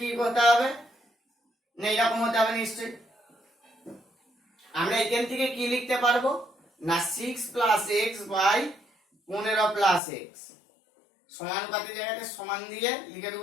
করতে হবে না, এরকম হতে হবে নিশ্চয়ই। আমরা এখান থেকে কি লিখতে পারবো না, 6 plus x by 15 plus x সমানুপাতির জায়গাতে সমান দিয়ে লিখে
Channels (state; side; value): drops out; right; at 10.0 s